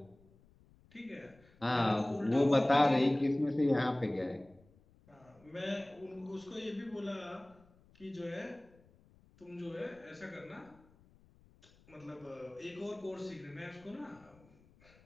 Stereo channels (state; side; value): noise; left; rumble, 28 dB below the sound